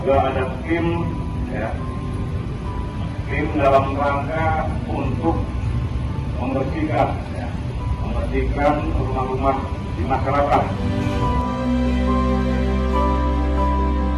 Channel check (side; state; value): both; identical; correlation 1.00